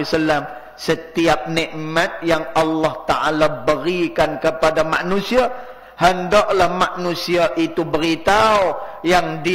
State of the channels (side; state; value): both; identical; correlation 1.00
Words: setiap nikmat yang Allah Ta'ala berikan kepada manusia, hendaklah manusia itu beritahu yang